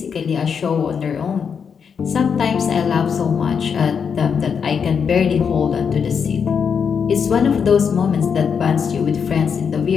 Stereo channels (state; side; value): quieter; right; 6.6 dB